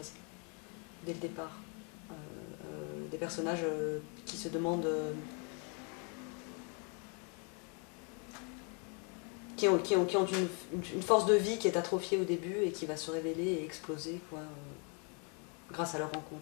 dès le départ. Des personnages qui se demandent... qui ont une force de vie qui est atrophiée au début et qui va se révéler et exploser, quoi, grâce à leur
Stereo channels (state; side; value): quieter; right; 36.9 dB